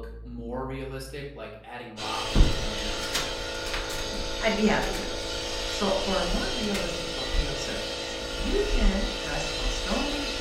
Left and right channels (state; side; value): identical; both; correlation 1.00